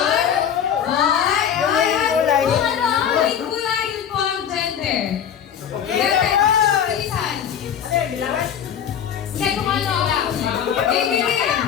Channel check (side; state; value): right; quieter; 8.7 dB